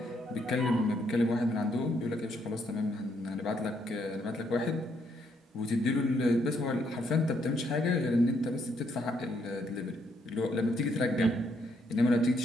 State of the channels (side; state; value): both; normal; correlation 0.73